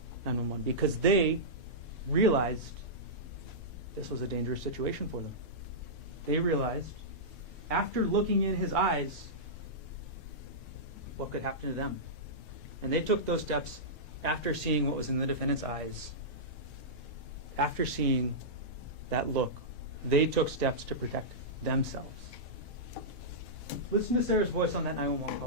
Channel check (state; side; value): normal; both; correlation -0.14